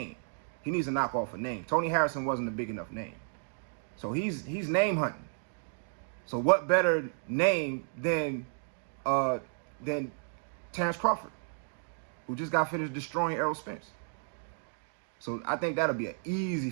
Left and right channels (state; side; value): silent; left; digital silence